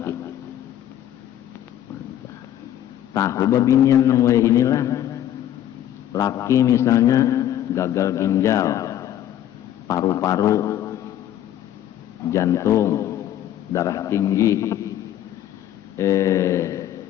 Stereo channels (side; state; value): right; quieter; 11.6 dB